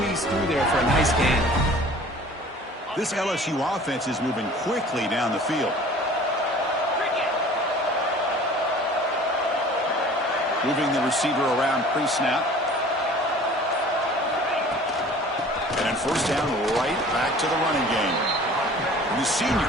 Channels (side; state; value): both; normal; correlation 0.47